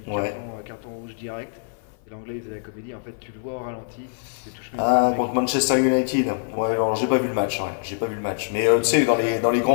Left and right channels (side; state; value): right; silent; 55 dB below the other